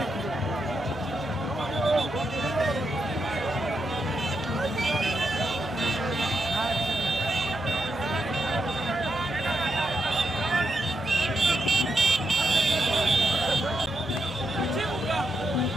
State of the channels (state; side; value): normal; both; correlation 0.83